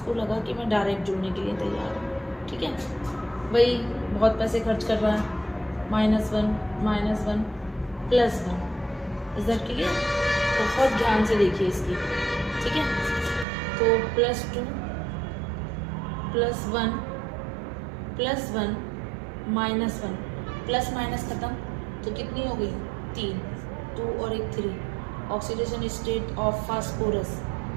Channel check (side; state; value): left; drops out; at 13.5 s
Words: लगा कि मैं डायरेक्ट जुड़ने के लिए तैयार हूँ, ठीक है। भाई बहुत पैसे खर्च कर रहा है, -1 -1 +1, इज दैट क्लियर? बहुत ध्यान से देखिए इसकी, ठीक है। तो +2 +1 +1 -1, प्लस माइनस ख़त्म, तो कितनी हो गई, 3, 2 और 1 3। ऑक्सीडेशन स्टेट ऑफ फास्फोरस